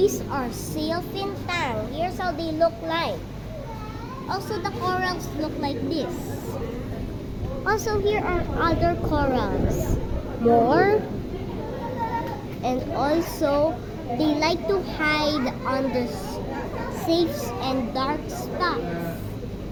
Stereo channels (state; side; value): identical; both; correlation 1.00